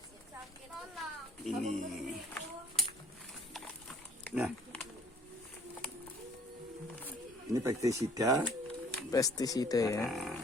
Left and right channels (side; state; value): both; normal; correlation 0.55